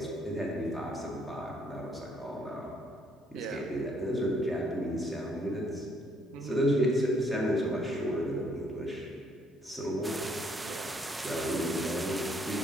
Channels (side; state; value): both; normal; correlation 0.68